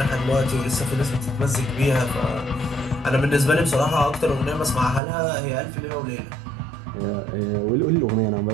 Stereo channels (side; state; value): left; drops out; at 5.0 s